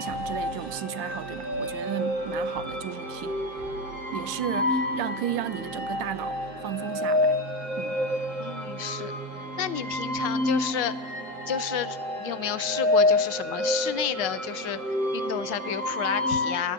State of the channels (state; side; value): late; left; 7.5 ms